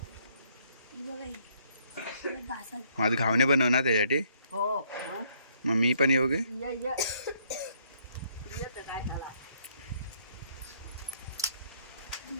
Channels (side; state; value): both; inverted; correlation -0.67